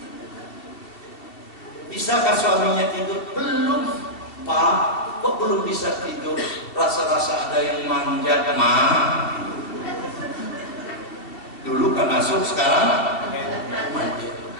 Bisakah suaminya tidur? Belum, Pak. Kok belum bisa tidur? Rasa-rasa ada yang manjat, Ma. Dulu kan masuk, sekarang manjat.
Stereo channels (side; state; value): right; late; 2.7 ms